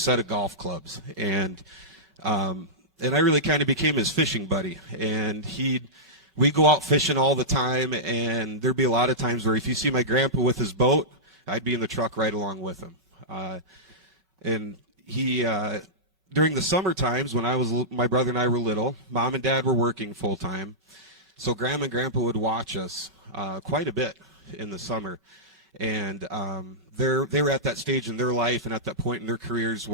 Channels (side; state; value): both; normal; correlation -0.13